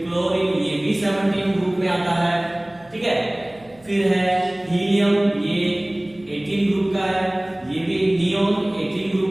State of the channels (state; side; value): noise; right; hum, 28 dB below the sound